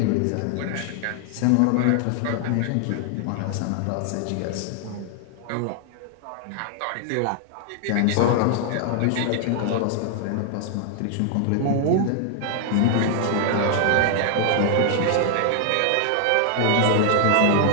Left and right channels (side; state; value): both; different; correlation 0.00